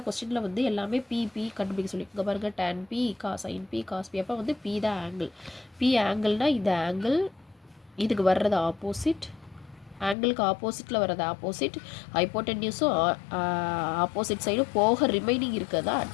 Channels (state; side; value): drops out; right; at 10.2 s